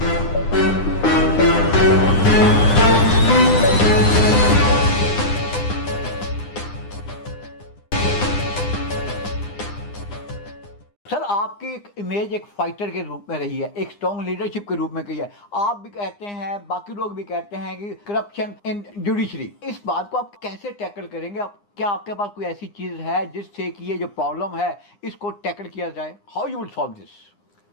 सर आपकी एक इमेज एक फाइटर के रूप में रही है, एक स्ट्रॉन्ग लीडरशिप के रूप में कही है। आप भी कहते हैं, बाकी लोग भी कहते हैं कि करप्शन इन जुडिशरी, इस बात को आप कैसे टैकल करेंगे? क्या आपके पास कोई ऐसी चीज है जिससे कि ये जो प्रॉब्लम है इसको टैकल किया जाए? How you will solve this?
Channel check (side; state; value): right; late; 9.8 ms